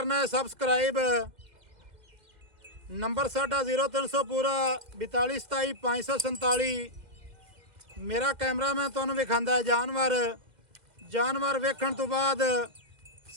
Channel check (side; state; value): left; late; 2.0 ms